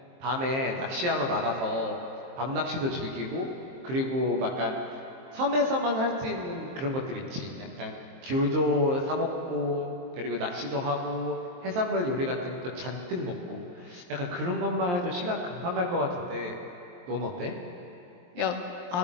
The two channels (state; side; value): late; left; 23 ms